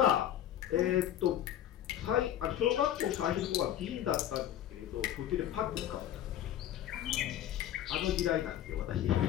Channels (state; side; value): quieter; right; 11.5 dB